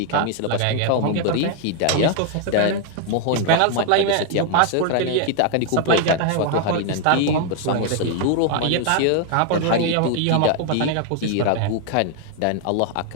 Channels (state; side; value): different; both; correlation 0.00